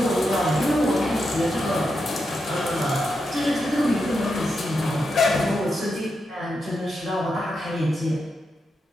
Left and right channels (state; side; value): normal; both; correlation 0.86